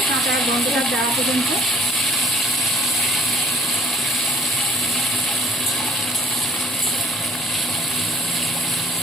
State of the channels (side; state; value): both; normal; correlation 0.57